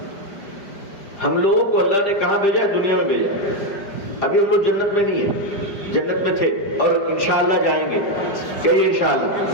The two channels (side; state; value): right; late; 5.0 ms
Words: ہم لوگوں کو اللہ نے کہاں بھیجا ہے؟ دنیا میں بھیجا ہے۔ ابھی ہم لوگ جنت میں نہیں ہیں، جنت میں تھے اور انشاءاللہ جائیں گے۔ کہیے انشاءاللہ۔